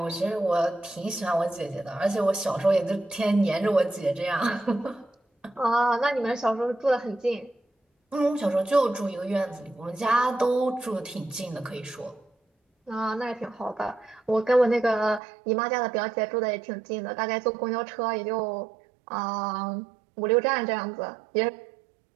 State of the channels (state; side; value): drops out; left; at 15.2 s